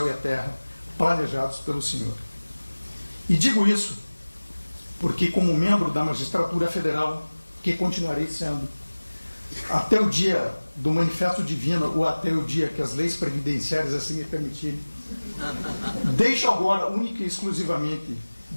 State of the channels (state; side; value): inverted; both; correlation -1.00